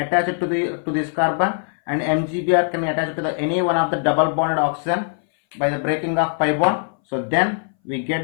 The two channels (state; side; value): silent; right; 61 dB below the other